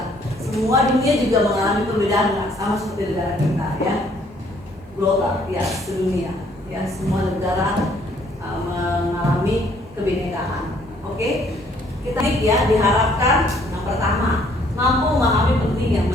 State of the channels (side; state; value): both; normal; correlation 0.63